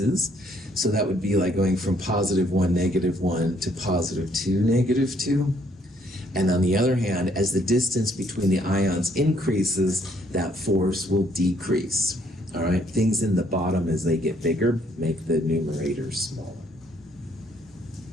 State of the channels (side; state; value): both; normal; correlation 0.67